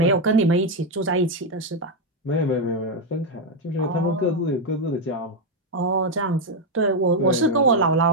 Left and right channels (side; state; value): both; normal; correlation 0.03